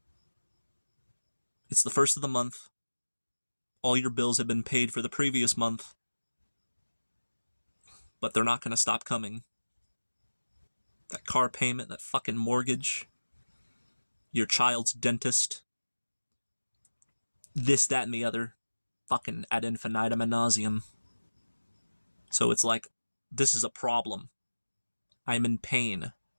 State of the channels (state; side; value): inverted; both; correlation -1.00